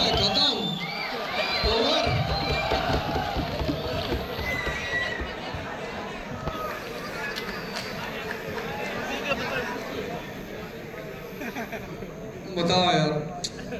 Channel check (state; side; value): identical; both; correlation 1.00